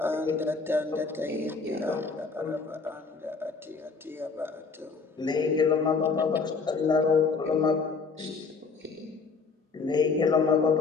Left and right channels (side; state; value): right; quieter; 4.7 dB